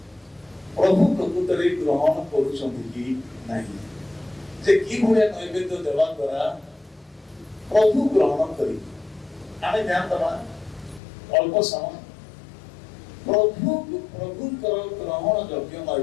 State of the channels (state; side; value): drops out; right; at 11.0 s